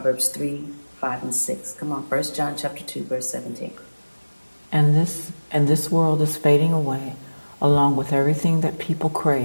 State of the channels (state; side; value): inverted; both; correlation -1.00